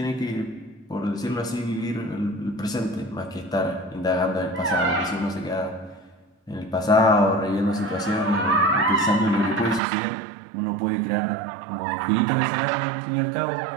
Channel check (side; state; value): left; drops out; at 9.8 s